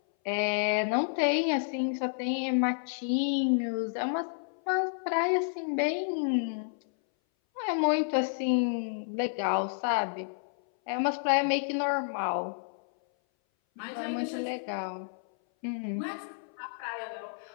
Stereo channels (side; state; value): right; silent; 58 dB below the other